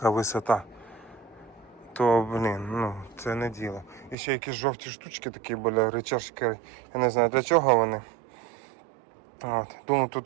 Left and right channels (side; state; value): left; drops out; at 4.2 s